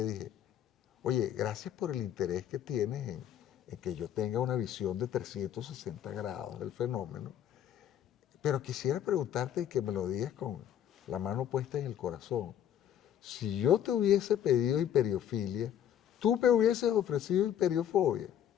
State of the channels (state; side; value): quieter; right; 10.2 dB